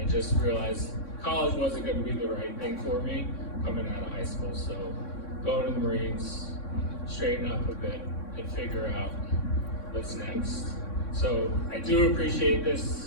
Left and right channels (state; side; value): late; right; 3.6 ms